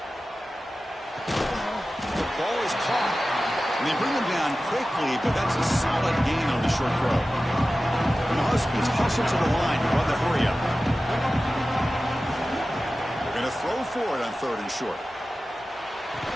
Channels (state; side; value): normal; both; correlation 0.95